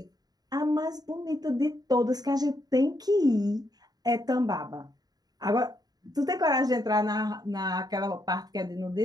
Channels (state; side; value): late; left; 0.19 ms